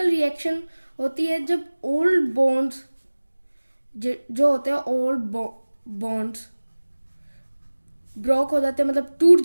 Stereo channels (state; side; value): inverted; both; correlation -1.00